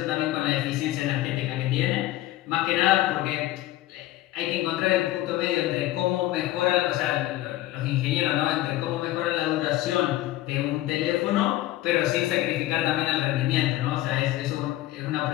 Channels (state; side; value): quieter; right; 15.7 dB